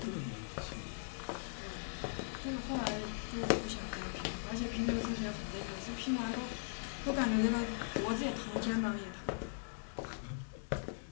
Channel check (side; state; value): right; silent; digital silence